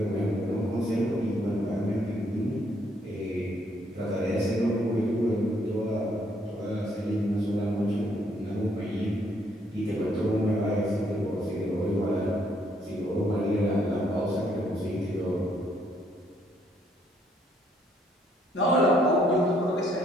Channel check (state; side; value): normal; both; correlation 0.70